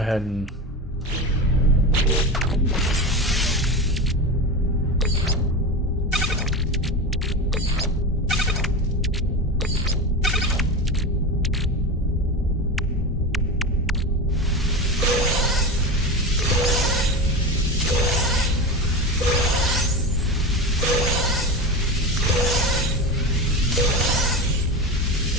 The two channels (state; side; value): normal; both; correlation 0.24